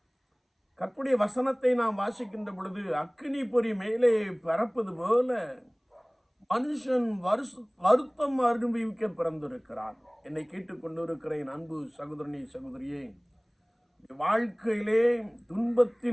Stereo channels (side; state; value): both; identical; correlation 1.00